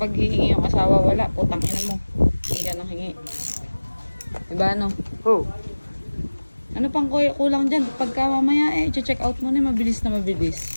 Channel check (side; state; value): both; inverted; correlation -1.00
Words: hihingi yung asawa, wala. Putang ina mo. Hindi ka nang hingi. Diba ano? Oh. Ano pang kulang dyan? Pagka mamaya check out mo na mabilis na